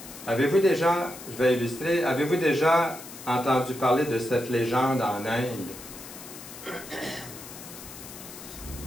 avez-vous déjà, je vais illustrer, avez-vous déjà entendu parler de cette légende en Inde?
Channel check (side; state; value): left; noise; hiss, 14 dB below the sound